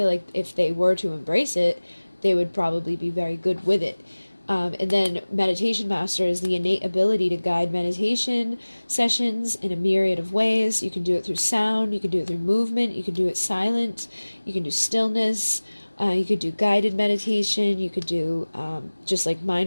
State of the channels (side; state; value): both; inverted; correlation -1.00